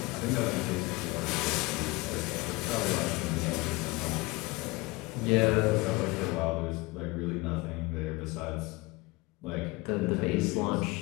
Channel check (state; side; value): quieter; right; 23.5 dB